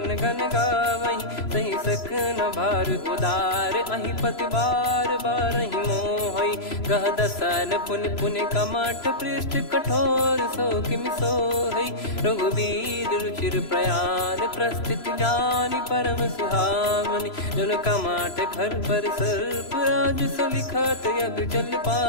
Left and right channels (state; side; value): late; right; 3.0 ms